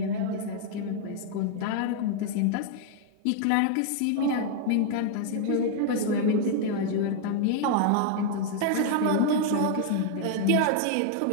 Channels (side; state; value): both; different; correlation 0.00